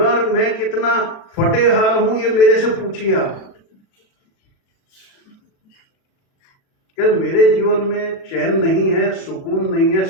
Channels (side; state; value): right; late; 37 ms